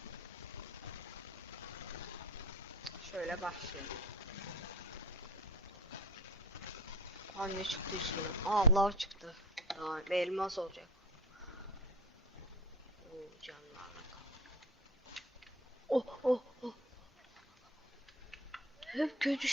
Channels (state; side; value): normal; both; correlation 0.39